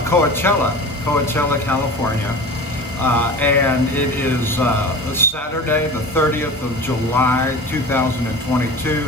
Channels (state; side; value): normal; both; correlation 0.35